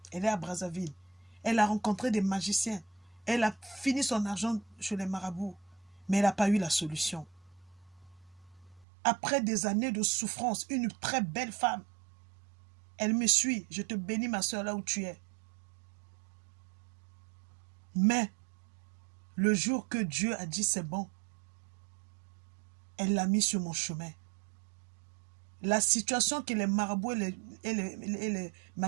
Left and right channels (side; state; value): left; drops out; at 8.8 s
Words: Elle est à Brazzaville. Elle a rencontré des magiciens. Elle a fini son argent chez les marabouts. Mais elle n'a pas eu la solution. Après des années de souffrance, une très belle femme. Elle me suit. Je te bénis, ma soeur, là où tu es. Mais, le jour que Dieu a dit c'est bon, elle l'a mis sur mon chemin. La situation que les marabouts et les